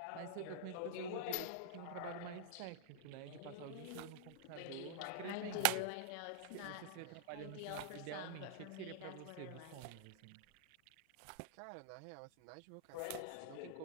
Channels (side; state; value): both; different; correlation -0.01